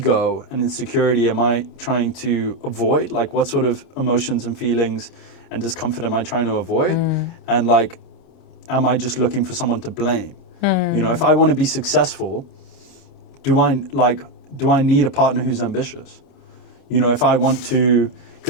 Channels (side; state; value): right; late; 29 ms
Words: and insecurity am I trying to avoid? What sort of emotions and feelings and discomfort am I trying to avoid? And am I just looking for someone to blame? If I want to be successful, do I need a partner who's ambitious? If I want to,